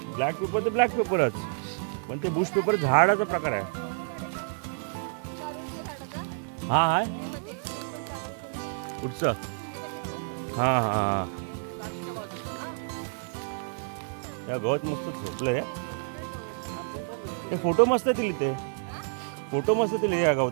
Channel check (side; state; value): left; silent; 59 dB below the other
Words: ब्लॅक पेपर तर ब्लॅक पेपरच. पण ते बुश पेपर झाडाचा प्रकार आहे. हा हाय कुठचं? हा हा त्या गवत मस्त झोपलंय. ते फोटो मस्त येतील. ते फोटो मस्त येतील या